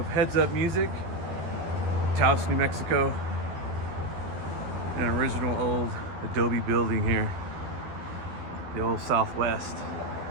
Heads Up Music, Taos, New Mexico. An original old adobe building here, the old Southwest.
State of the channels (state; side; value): late; left; 12 ms